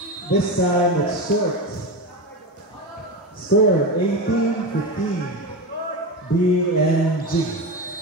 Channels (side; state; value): both; normal; correlation 0.20